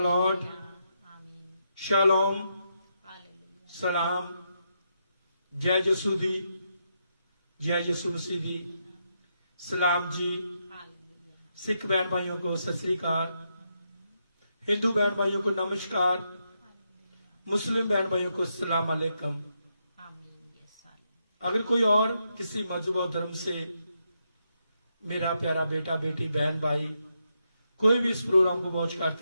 Lord, shalom, सलाम, जय यसू दी, जय यसू मसीह दी, सलाम जी। सिख बहन भाइयों को सत श्री अकाल, हिंदू बहन भाइयों को नमस्कार, मुस्लिम बहन भाइयों को सलाम अलैकुम। अगर कोई और किसी मजहब और धर्म से मेरा प्यारा बेटा बेटी बहन भाई कोई भी इस प्रोग्राम को वॉच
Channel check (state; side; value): inverted; both; correlation -0.82